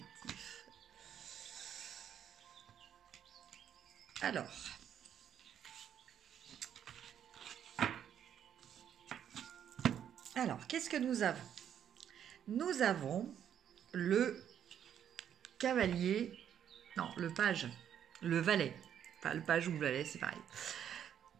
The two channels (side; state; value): left; quieter; 9.4 dB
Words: Alors, qu'est-ce que nous avons? Nous avons le cavalier, non, le page, le valet. Enfin, le page ou le valet, c'est pareil.